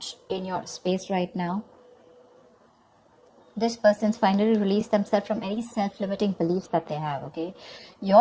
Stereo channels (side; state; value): both; identical; correlation 1.00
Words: in your space right now. This person's finally released themselves from any self-limiting beliefs that they have, okay?